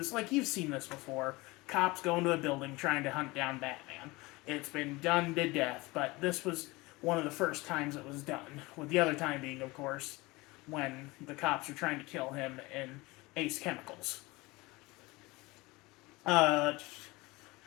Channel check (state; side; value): quieter; right; 22.6 dB